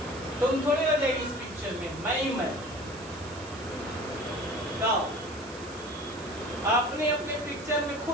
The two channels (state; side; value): noise; right; hiss, 18 dB below the sound